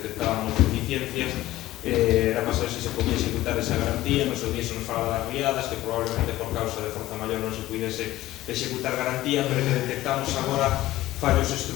deficiencias. Era para saber se podía executar esa garantía. Nos días se nos falaba das riadas, que probablemente por causa de forza maior non se puidese executar garantía, pero que detectamos agora fallos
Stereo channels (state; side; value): quieter; right; 15.9 dB